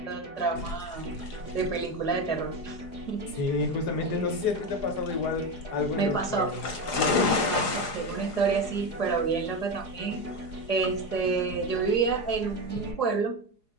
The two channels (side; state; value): right; late; 4.8 ms